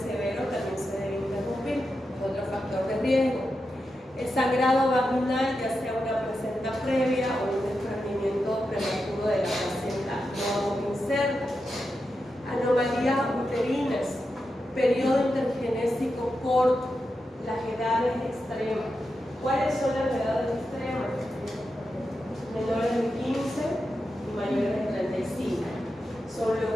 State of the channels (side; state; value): both; normal; correlation 0.88